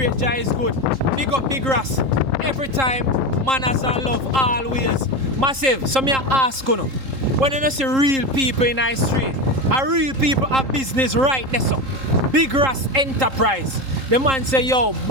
Jah is good. Big up Big Ras. Every time, manners and love, always. Massive. So me I ask you, when you don't see real people in the street, and real people have business right there, so Big Ras Enterprise. The man say, yo,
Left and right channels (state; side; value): late; left; 3.8 ms